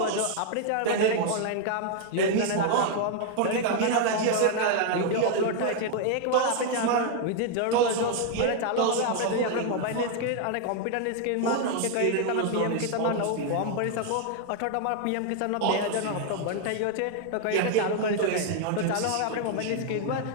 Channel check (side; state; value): both; different; correlation 0.00